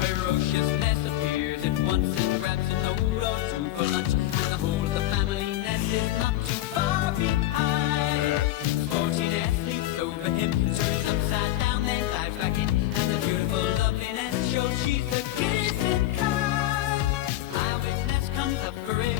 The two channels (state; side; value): quieter; right; 14.7 dB